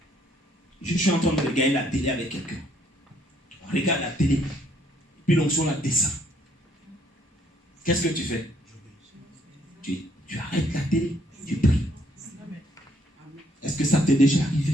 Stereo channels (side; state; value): both; normal; correlation 0.67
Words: Je suis en train de regarder la télé avec quelqu'un. On regarde la télé. Puis l'onction la descend. Qu'est-ce que tu fais? Tu arrêtes la télé. Tu pries. Est-ce que ça t'est déjà